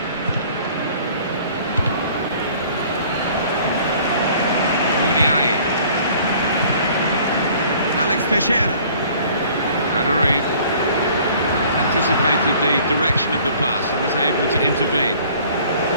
Muniain. Alex Teixeira. Aduriz. Anticipated the direction of the pass and was able to intervene.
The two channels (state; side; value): inverted; both; correlation -0.53